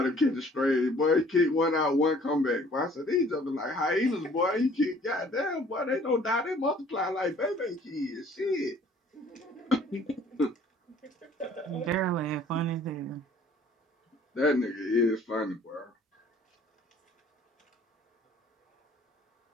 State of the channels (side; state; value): both; normal; correlation 0.55